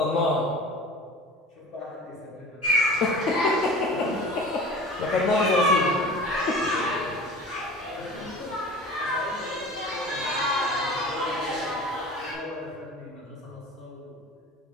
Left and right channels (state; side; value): normal; both; correlation 0.38